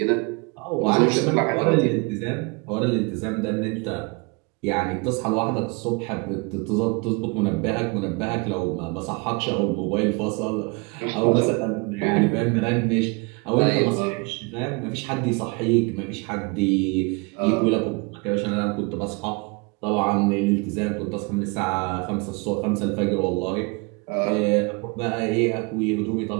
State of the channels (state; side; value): quieter; left; 29.5 dB